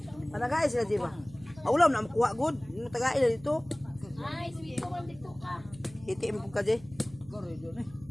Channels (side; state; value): right; noise; hum, 21 dB below the sound